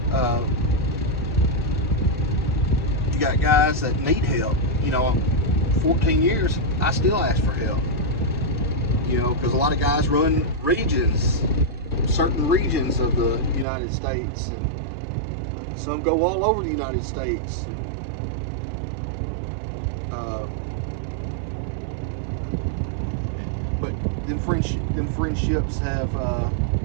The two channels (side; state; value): left; drops out; at 13.7 s